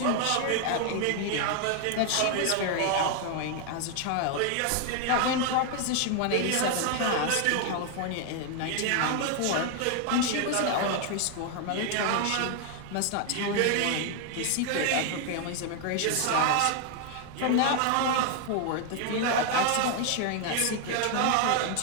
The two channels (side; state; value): both; different; correlation 0.01